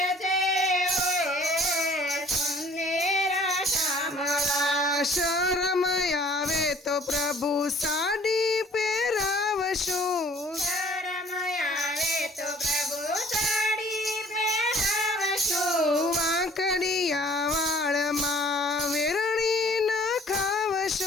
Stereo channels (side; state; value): both; normal; correlation 0.55